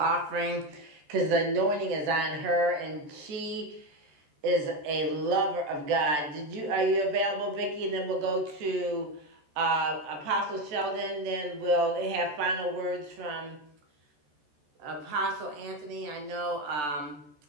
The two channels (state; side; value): late; left; 13 ms